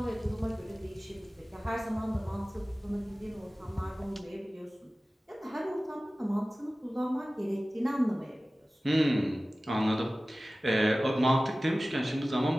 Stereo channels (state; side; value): normal; both; correlation 0.97